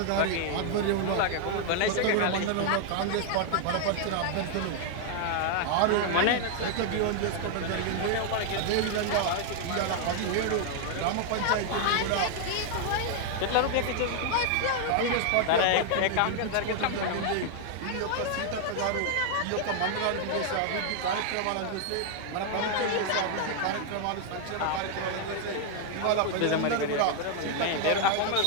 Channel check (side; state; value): both; different; correlation 0.00